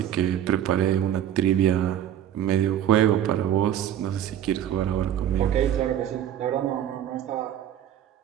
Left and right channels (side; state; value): left; quieter; 10.6 dB